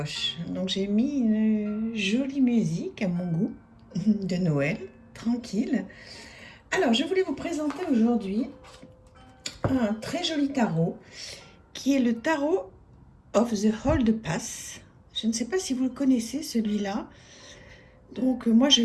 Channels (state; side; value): identical; both; correlation 1.00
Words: Donc j'ai mis une jolie musique à mon goût de Noël, tranquille. Alors, je voulais vous présenter aujourd'hui un très joli tarot qui est le tarot of the Hold Pass. Je ne sais pas si vous le connaissez celui-là. Donc moi je